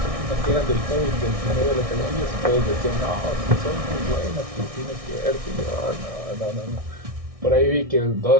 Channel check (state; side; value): late; left; 1.6 ms